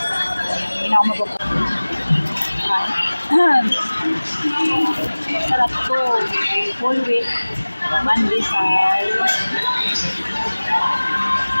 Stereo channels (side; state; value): both; inverted; correlation -1.00